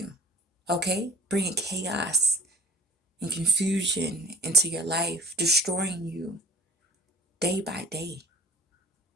okay? Bringing chaos and confusion into your life, destroying you day by day,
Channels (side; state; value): both; normal; correlation 0.45